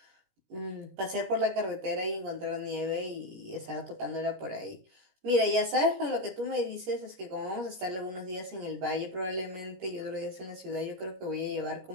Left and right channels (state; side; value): late; left; 16 ms